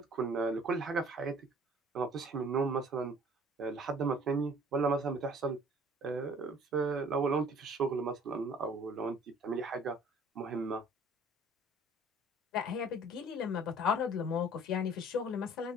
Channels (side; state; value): both; normal; correlation 0.52